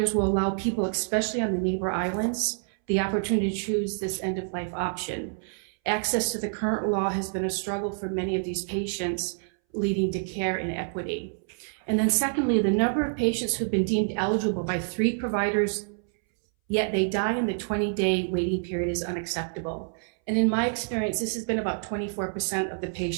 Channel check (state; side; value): silent; left; 60 dB below the other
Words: will allow people, especially on the neighbor islands, the opportunity to choose this end-of-life option. Access to the current law has been a struggle for many of these patients, leading to care inequity. And then secondly, the number of patients who've been deemed eligible by 3 providers, yet they die in the 20-day waiting period, is unacceptable. And in my experience, this has been about 24% of the